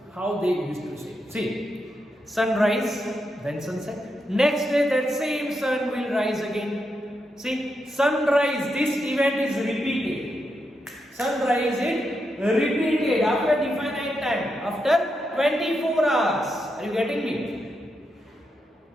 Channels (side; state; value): both; normal; correlation 0.84